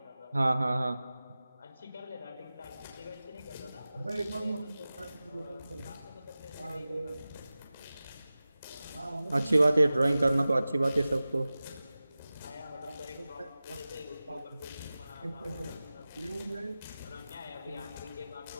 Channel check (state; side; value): inverted; both; correlation -0.96